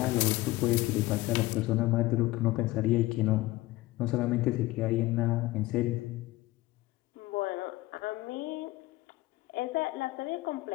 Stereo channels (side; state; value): right; quieter; 18.5 dB